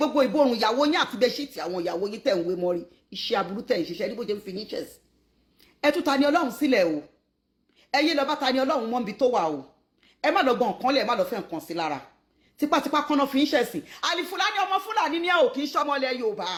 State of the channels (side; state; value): both; identical; correlation 1.00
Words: ìborùn ìyàwó yín àti bẹ́ṣíìtì àwọn ìyàwó yín tẹ̀ ń wé mọ́rí. Iṣẹ́ aburú tẹ̀ ń ṣiṣẹ́ ní bó ṣe ń fi yín chess. Ẹ tú TaniOlohun sílẹ̀ o. Ẹ yé lọ bá TaniOlohun mọ́ níbi tó wà o. Ẹ má lọ gbọ́n nǹkan lẹ̀, ẹ má lọ fẹ́ nǹkan sí lára. Tipátipá kọ́nà fi ń ṣẹ̀sìn. Alfulaany ọmọ Fúlàní ni ẹ ò kì í ṣọmọlẹ̀ Yorùbá.